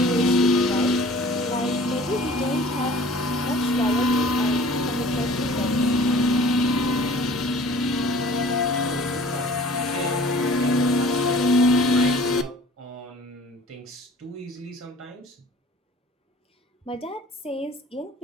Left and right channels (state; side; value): normal; both; correlation 0.48